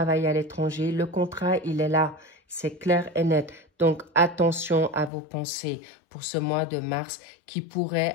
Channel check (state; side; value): drops out; right; at 5.1 s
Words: à l'étranger. Le contrat, il est là. C'est clair et net. Donc, attention à vos pensées pour ce mois de mars qui pourrait